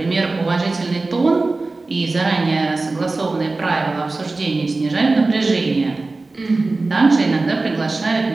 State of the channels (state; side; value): quieter; left; 3.4 dB